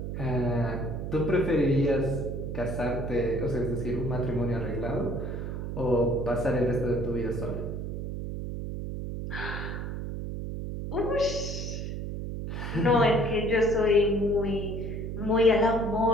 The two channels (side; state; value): right; noise; hum, 5 dB below the sound